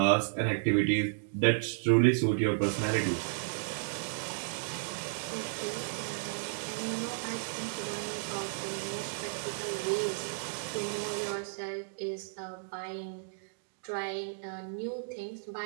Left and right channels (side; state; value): left; silent; digital silence